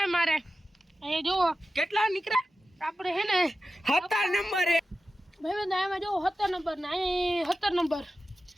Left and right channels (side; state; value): both; normal; correlation 0.93